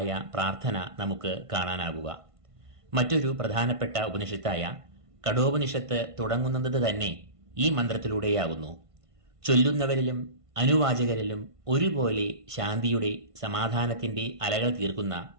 പ്രാർത്ഥന നമുക്ക് കാണാനാകുക. മറ്റൊരു പ്രധാനപ്പെട്ട ഉപനിഷത്തായ കഠോപനിഷത്ത് തുടങ്ങുന്നത് തന്നെ ഈ മന്ത്രത്തിലൂടെയാകുന്നു. ചൊല്ലുന്നവരിലും അനുവാചകരിലും ഒരുപോലെ ശാന്തിയുടെ, സമാധാനത്തിന്റെ അലകൾ തീർക്കുന്ന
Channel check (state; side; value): late; left; 1.5 ms